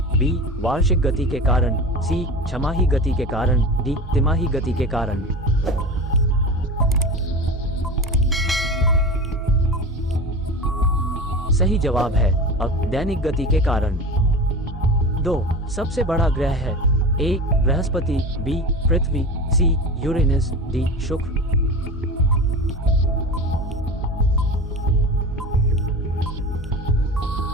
बी, वार्षिक गति के कारण, सी, छमाही गति के कारण, डी, तिमाही गति के कारण। सही जवाब है अब दैनिक गति के कारण। 2, सबसे बड़ा ग्रह है। ए, बृहस्पति, बी, पृथ्वी, सी, यूरेनस, डी, शुक्र।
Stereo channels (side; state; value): both; normal; correlation 0.31